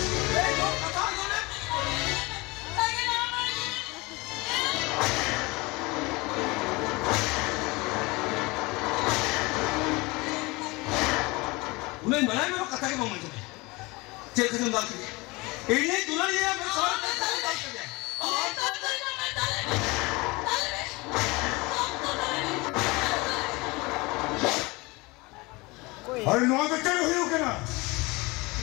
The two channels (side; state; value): right; quieter; 24.2 dB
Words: kata dulu. saya nama उन्हें बनाए मेरे कथा के मामले में चेक कर दूँगा कि इन्हें दुल्हनिया में सारा पैसा निकाल कर दिया अरे नौ बच्चे हुई हो क्या